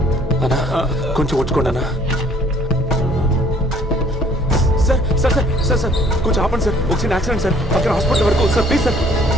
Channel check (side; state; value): both; normal; correlation 0.58